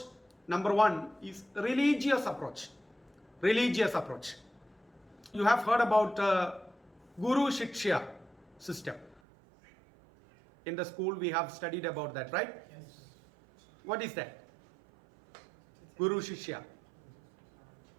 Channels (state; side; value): drops out; left; at 9.2 s